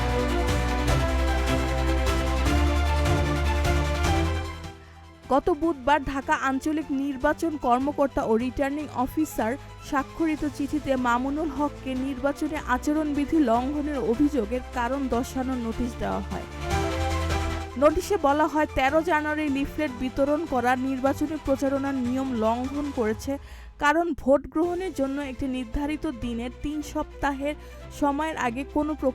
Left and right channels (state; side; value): identical; both; correlation 1.00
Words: গত বুধবার ঢাকা আঞ্চলিক নির্বাচন কর্মকর্তা ও রিটার্নিং অফিসার স্বাক্ষরিত চিঠিতে মামুনুল হককে নির্বাচনী আচরণবিধি লঙ্ঘনের অভিযোগের কারণ দর্শানোর নোটিশ দেওয়া হয়। নোটিশে বলা হয়, 13 জানুয়ারি লিফলেট বিতরণ করা নির্বাচনী প্রচারণার নিয়ম লঙ্ঘন করেছে, কারণ ভোট গ্রহণের জন্য একটি নির্ধারিত দিনের 3 সপ্তাহের সময়ের আগে কোনো